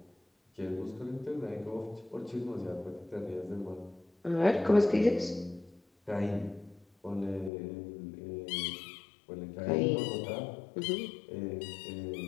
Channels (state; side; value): drops out; right; at 7.5 s